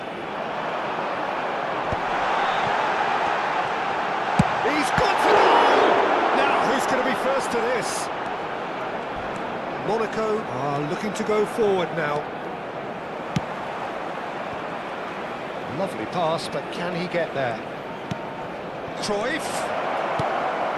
He's got to go! Now, who's going to be first to this? Monaco are looking to go forward now. Lovely pass, but can he get there? Cruyff.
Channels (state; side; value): identical; both; correlation 1.00